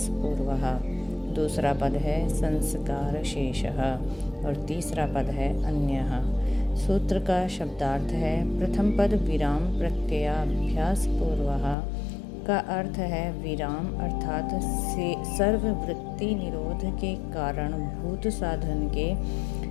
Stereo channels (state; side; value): drops out; right; at 11.8 s